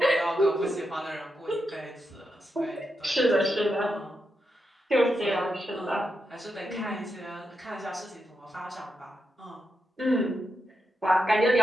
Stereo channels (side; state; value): both; normal; correlation 0.85